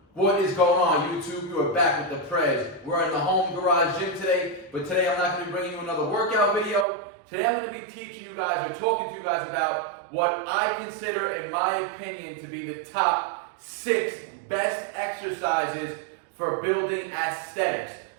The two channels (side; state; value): left; drops out; at 6.9 s